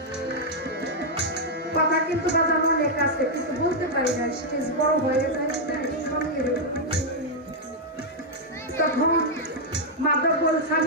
কথা কিন্তু বাজানো অনেক আছে, কিন্তু বলতে পারি না, স্টেজ বড় হয়ে যায়। তখন মাধব বলছে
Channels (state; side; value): normal; both; correlation -0.03